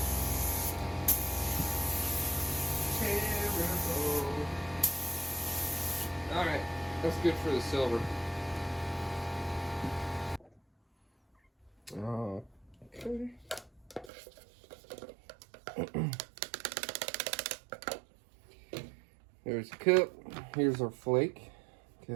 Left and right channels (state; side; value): drops out; left; at 14.1 s